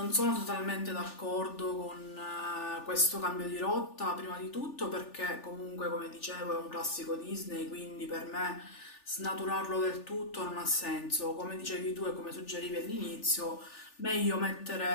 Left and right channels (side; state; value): right; late; 3.4 ms